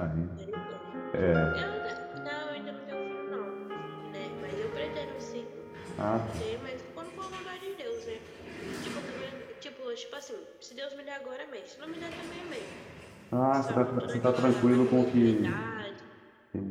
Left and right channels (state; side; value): identical; both; correlation 1.00